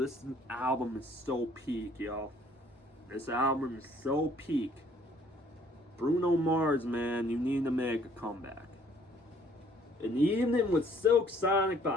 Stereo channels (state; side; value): normal; both; correlation 0.60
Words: this album is so peak, y'all. This album is so peak. Bruno Mars, man, you need to make a comeback. An Evening with Silk Sonic